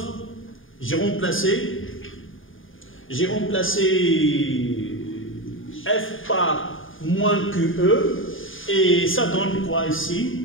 J'ai remplacé F par moins QE et ça donne quoi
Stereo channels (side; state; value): right; late; 0.58 ms